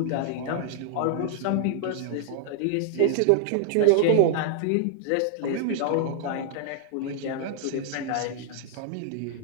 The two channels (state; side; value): different; both; correlation 0.00